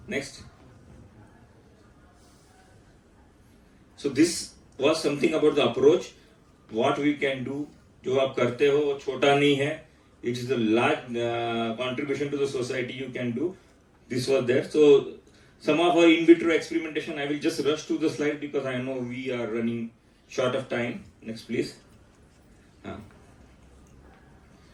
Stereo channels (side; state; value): both; identical; correlation 1.00